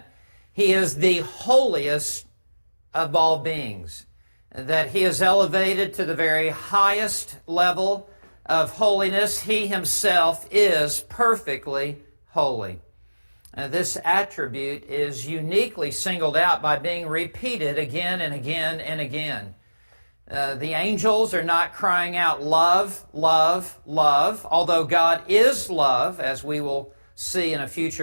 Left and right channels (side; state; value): both; inverted; correlation -1.00